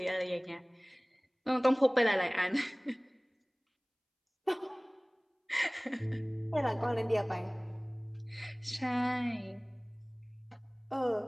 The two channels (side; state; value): both; identical; correlation 1.00